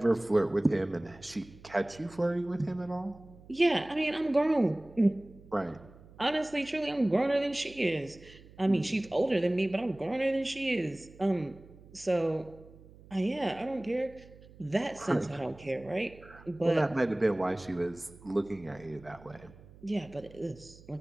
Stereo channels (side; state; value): right; noise; hum, 22 dB below the sound